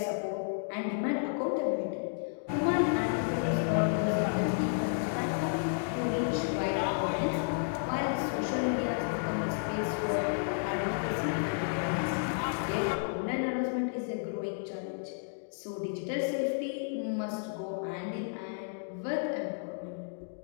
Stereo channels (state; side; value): silent; right; digital silence